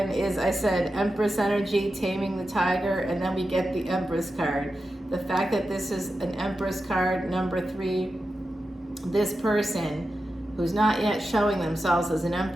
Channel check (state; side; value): normal; both; correlation 0.90